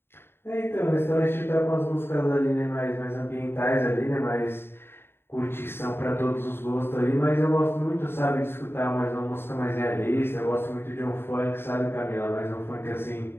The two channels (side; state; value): right; late; 0.11 ms